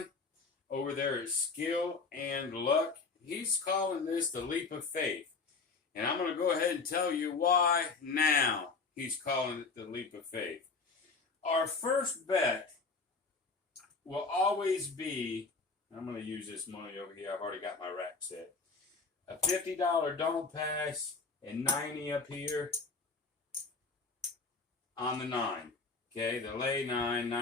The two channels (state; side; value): quieter; right; 4.4 dB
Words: over there at Skill and Luck. He's calling this the leap of faith, and I'm going to go ahead and tell you why now he's calling it the leap of faith. Our first bet will always be, I'm going to use this money over here. I've already got my rack set. A $50 don't pass and 90 up here on the 9. Okay, the lay 9,